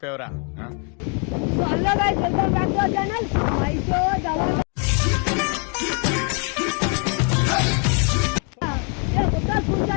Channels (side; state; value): right; quieter; 38.1 dB